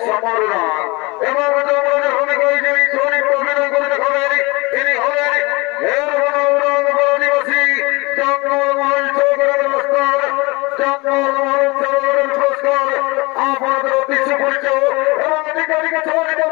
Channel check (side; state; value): right; quieter; 25.1 dB